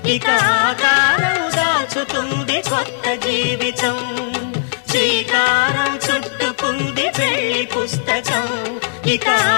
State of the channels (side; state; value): right; silent; 64 dB below the other